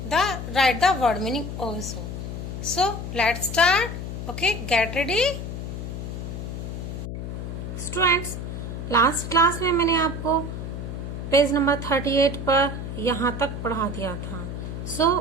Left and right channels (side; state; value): left; noise; hum, 6 dB below the sound